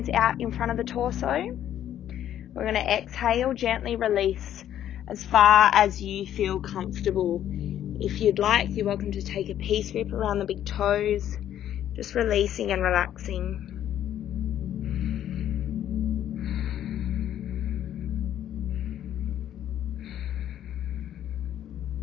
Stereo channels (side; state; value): right; quieter; 11.1 dB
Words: out in front of the torso. We're going to exhale, gently release as far as you feel comfortable. If you'd like, you're welcome to take a peace grip around the big toes, just releasing and relaxing.